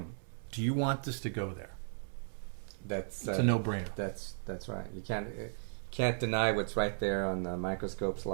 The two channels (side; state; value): left; silent; 54 dB below the other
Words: Do you want this to go there? It's a no-brainer. That's right. You can't deny what's right there on the microscope